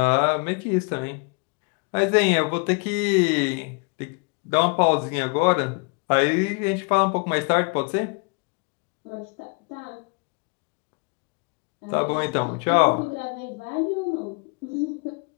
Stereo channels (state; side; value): quieter; right; 33.2 dB